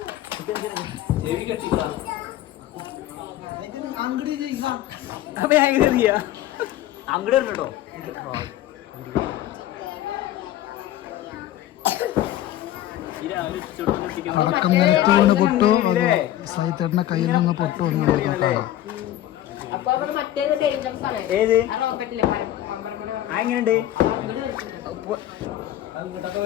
അങ്ങോട്ട് കേട്ടോ. പൊട്ടു സൈത്തേട്ടന്റെ കയ്യിൽ നിന്ന് പൊട്ടു ഏത് എങ്ങനെയുണ്ട്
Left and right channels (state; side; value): quieter; right; 13.1 dB